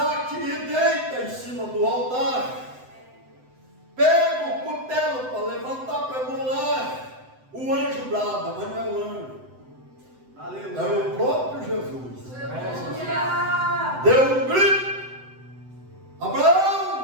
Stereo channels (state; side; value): late; left; 7.9 ms